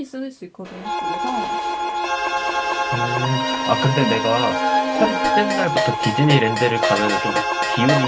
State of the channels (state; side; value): identical; both; correlation 1.00